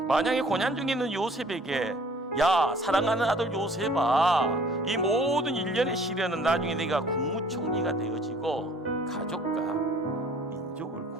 만약에 고난 중에 있는 요셉에게 야, 사랑하는 아들 요셉아, 이 모든 일련의 시련은 나중에 내가 국무총리가 되어지고 가족과 민족을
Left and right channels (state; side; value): normal; both; correlation 0.54